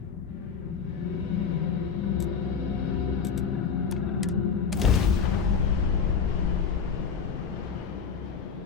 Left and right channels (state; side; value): quieter; right; 6.3 dB